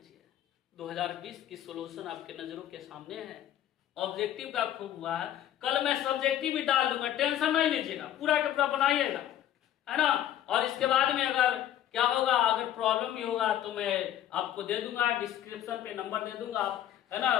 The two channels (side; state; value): right; quieter; 11.5 dB